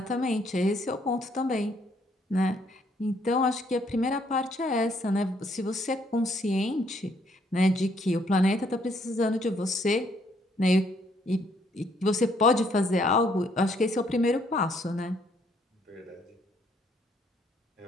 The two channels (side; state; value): both; normal; correlation 0.68